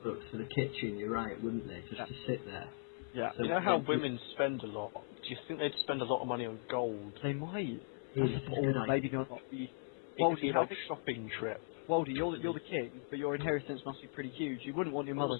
for the kitchen, you're right, wouldn't they? Just Yeah. to sit there. Yeah. So You know how women spend a lot? Do you think they'd spend a lot of money on gold? They might. It's That's a a good or idea. maybe not. It Well, could be how like big- a shopping trip. Waldy, you're the king, but your inheritance must be pretty huge. You wouldn't want your mother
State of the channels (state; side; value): silent; right; 52 dB below the other